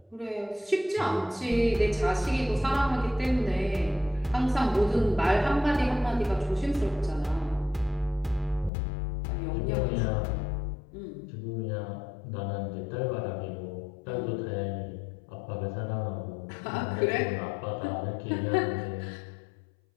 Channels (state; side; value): drops out; right; at 8.7 s